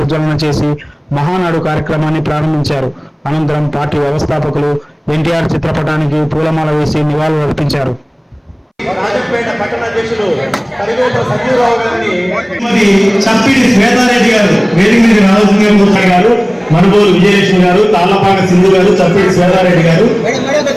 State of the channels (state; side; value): identical; both; correlation 1.00